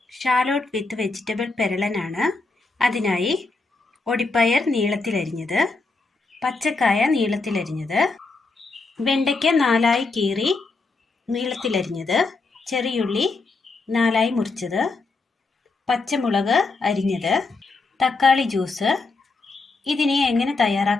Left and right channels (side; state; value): right; quieter; 3.7 dB